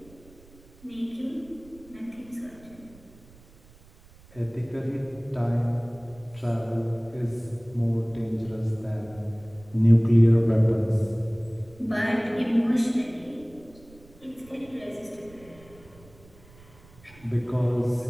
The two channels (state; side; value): noise; right; rumble, 24 dB below the sound